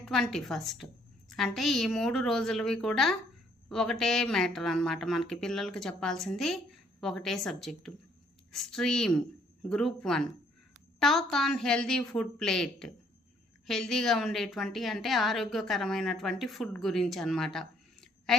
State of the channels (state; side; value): normal; both; correlation 0.65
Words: 21st. అంటే ఈ 3 రోజులవి కూడా ఒకటే మ్యాటర్ అన్నమాట. మనకి పిల్లలకి చెప్పాల్సింది ఒకటే subject. Stream group 1 talk on healthy food plate. హెల్దీగా ఉండేటువంటి అంటే ఆరోగ్యకరమైనటువంటి ఫుడ్ గురించి అన్నమాట.